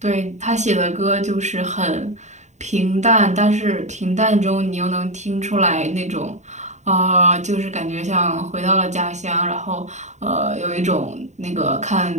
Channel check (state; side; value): late; left; 0.34 ms